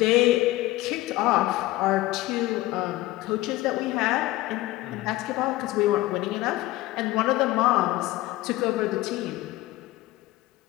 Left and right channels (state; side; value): quieter; right; 17.8 dB